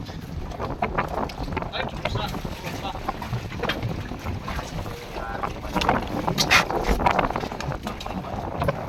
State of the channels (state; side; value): identical; both; correlation 1.00